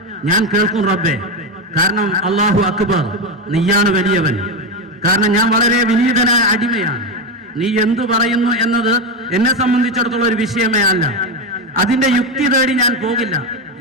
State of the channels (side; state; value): both; normal; correlation 0.12